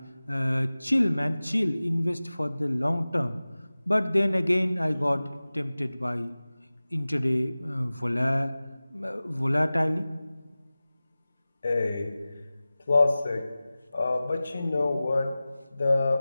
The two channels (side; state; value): both; inverted; correlation -0.98